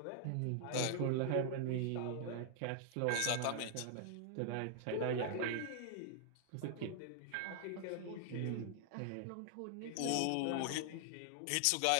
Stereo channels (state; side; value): different; both; correlation 0.00